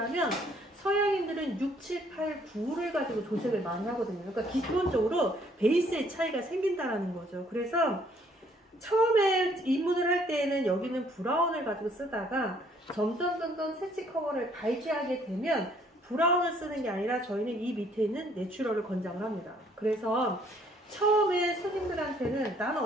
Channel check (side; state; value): both; normal; correlation 0.63